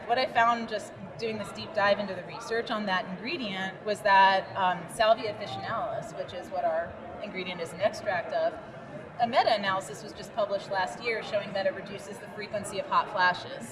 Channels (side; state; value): both; identical; correlation 1.00